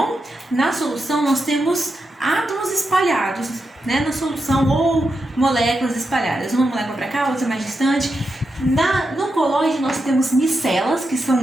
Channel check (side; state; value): both; normal; correlation 0.87